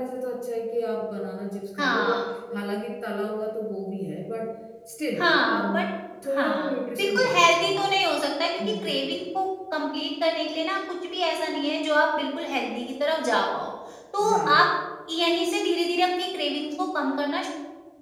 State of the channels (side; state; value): both; identical; correlation 1.00